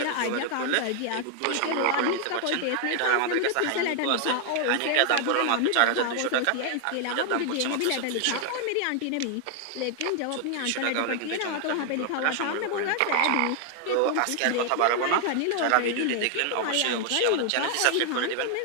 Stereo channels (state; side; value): different; both; correlation 0.00